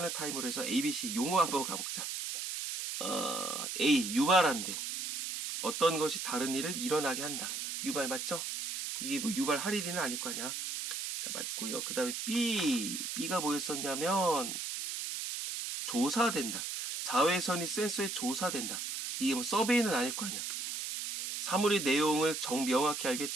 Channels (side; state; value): right; noise; hiss, 4 dB below the sound